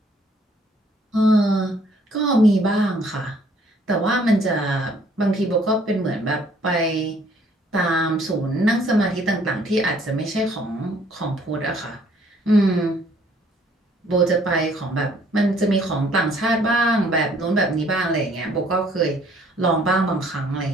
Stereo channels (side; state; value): both; normal; correlation 0.61